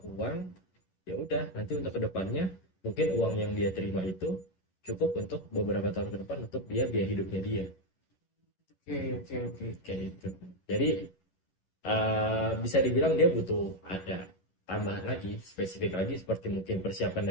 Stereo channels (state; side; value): late; right; 10 ms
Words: Ya udah, nanti untuk kedepannya mungkin uang yang dia terima itu cukup untuk beberapa tahun ke depan untuk dia biaya hidupnya dia. Oke. Kayak itu. Jadi bisa dibilang dia butuh ada tambahan lagi, spesifik lagi seperti mungkin persiapan